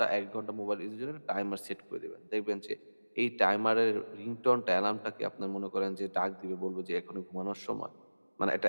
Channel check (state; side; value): inverted; both; correlation -1.00